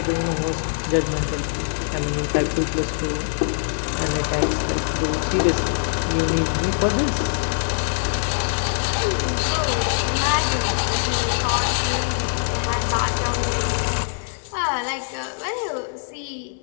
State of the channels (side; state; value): right; silent; 64 dB below the other